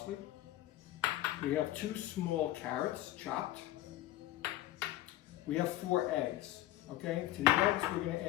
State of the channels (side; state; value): right; quieter; 15.2 dB